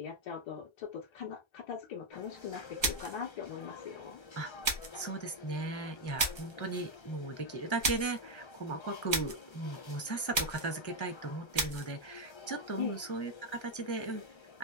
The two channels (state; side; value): late; right; 1.3 ms